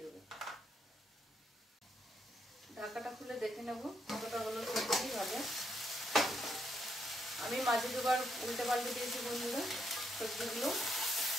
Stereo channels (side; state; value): both; normal; correlation 0.77